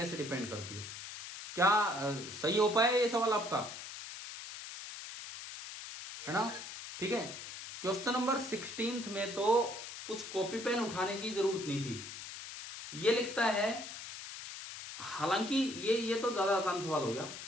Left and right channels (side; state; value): left; noise; hiss, 10 dB below the sound